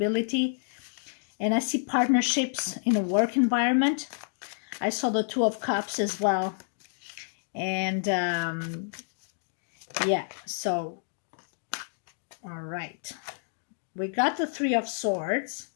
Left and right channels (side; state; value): right; silent; digital silence